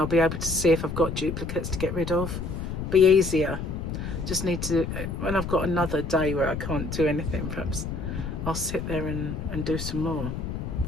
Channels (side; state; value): left; noise; rumble, 5 dB below the sound